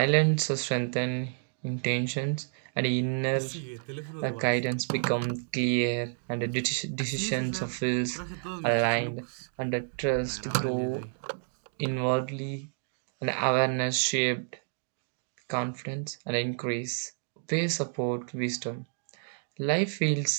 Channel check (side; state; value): left; silent; digital silence